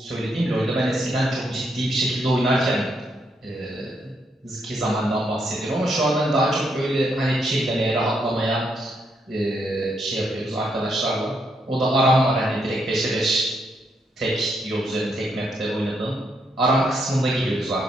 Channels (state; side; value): normal; both; correlation 0.77